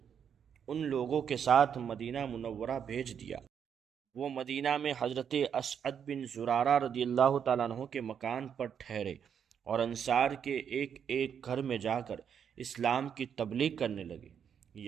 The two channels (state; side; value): quieter; left; 7.9 dB